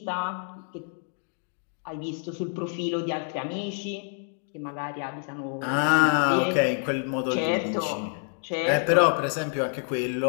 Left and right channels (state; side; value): silent; right; 55 dB below the other